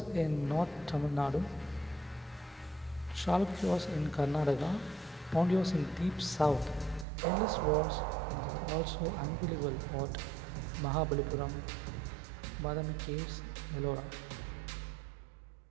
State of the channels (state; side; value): drops out; left; at 7.1 s